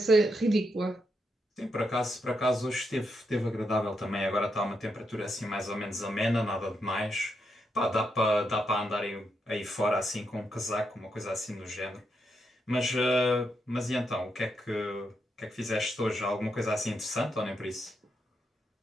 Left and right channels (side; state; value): both; normal; correlation 0.81